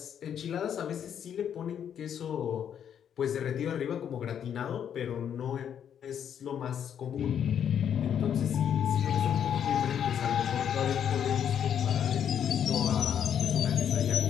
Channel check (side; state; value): right; quieter; 8.8 dB